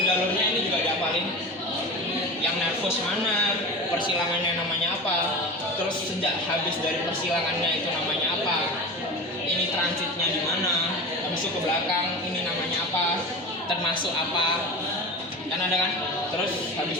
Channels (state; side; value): normal; both; correlation 0.29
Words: ini juga dihafalin. Yang nervus mana, persilangannya namanya apa, terus sejak habis dari persilangannya itu namanya apa, ini transitnya di mana, habis itu ke belakang ini namanya apa, termasuk apa, kan ada kan, terus